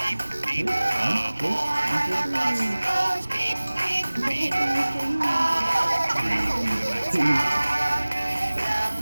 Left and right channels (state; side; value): inverted; both; correlation -1.00